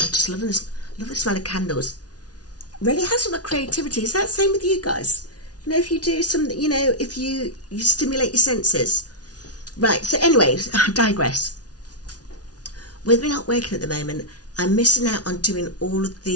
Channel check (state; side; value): late; right; 0.69 ms